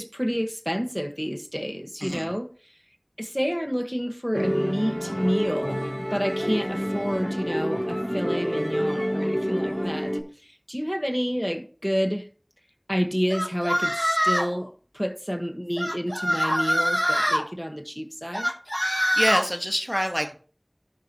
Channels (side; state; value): both; identical; correlation 1.00